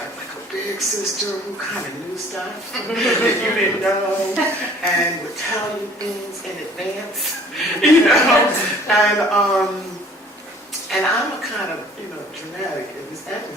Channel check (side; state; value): both; normal; correlation 0.53